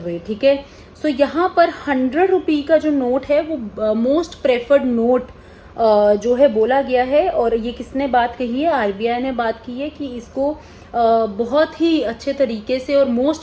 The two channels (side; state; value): both; identical; correlation 1.00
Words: ठीक है। सो यहाँ पर 100 रुपी का जो नोट है वो मोस्ट प्रेफर्ड नोट जो है बोला गया है। और ये किसने बात कही है, आरबीआई ने बात की है कि इसको बहुत ही अच्छे तरीके से और